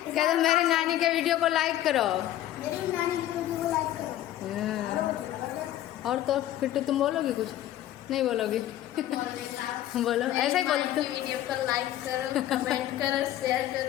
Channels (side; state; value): right; quieter; 13.2 dB